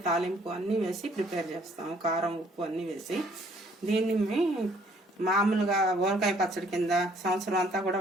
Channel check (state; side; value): normal; both; correlation 0.62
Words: తాలింపు అన్నీ వేసి ప్రిపేర్ చేస్తాం. కారం ఉప్పు అన్నీ వేసి దీన్ని మామూలుగా ఊరకాయ పచ్చడి కింద సంవత్సరం అంతా కూడా